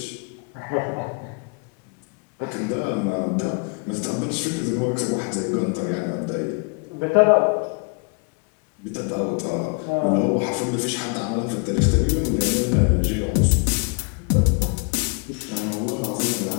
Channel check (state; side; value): quieter; right; 35.3 dB